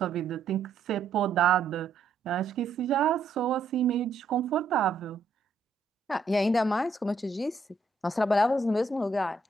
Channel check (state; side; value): quieter; left; 3.7 dB